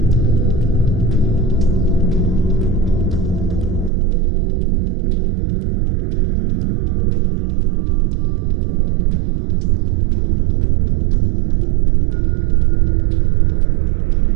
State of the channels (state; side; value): drops out; left; at 3.9 s